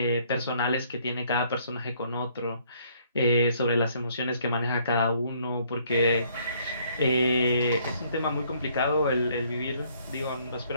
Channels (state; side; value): inverted; both; correlation -0.64